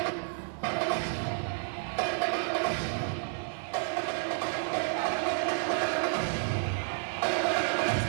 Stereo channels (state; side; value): silent; left; 57 dB below the other